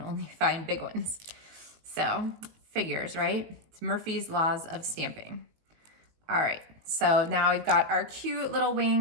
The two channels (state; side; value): late; left; 19 ms